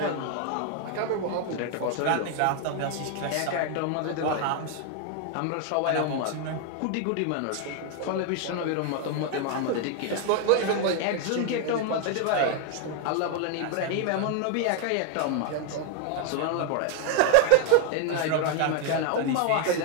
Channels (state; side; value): different; both; correlation 0.00